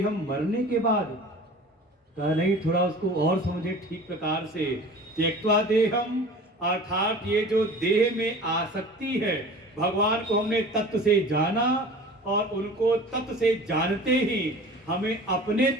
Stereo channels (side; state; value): both; normal; correlation 0.41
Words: मरने के बाद कहा नहीं, थोड़ा उसको और समझे ठीक प्रकार से। त्यक्त्वा देहम अर्थात ये जो देह में आसक्ति है, भगवान को हमने तत्व से जाना और उनको तत्व से जानते ही हमें अपने